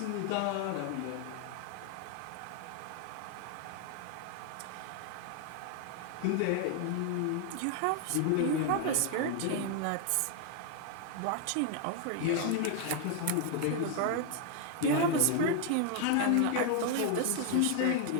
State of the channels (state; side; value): different; both; correlation 0.00